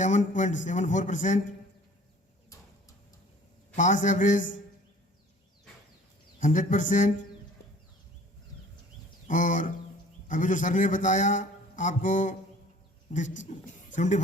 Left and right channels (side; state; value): both; normal; correlation 0.50